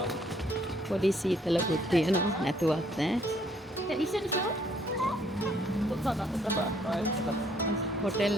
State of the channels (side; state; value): both; normal; correlation 0.65